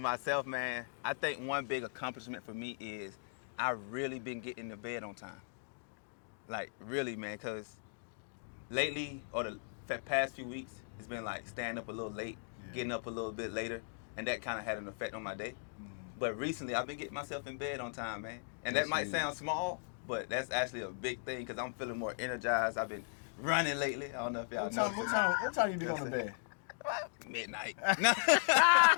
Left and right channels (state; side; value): silent; right; digital silence